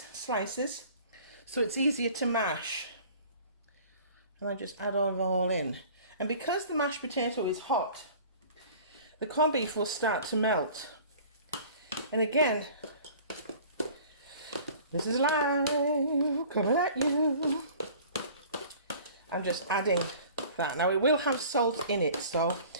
slices, so it's easier to mash. And I just add all in. And because the mashed potato is hot, the corned beef will start to melt. And again, this is live, coming at you. I'm just adding that. Now it will have salt in it, so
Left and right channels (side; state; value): both; inverted; correlation -0.47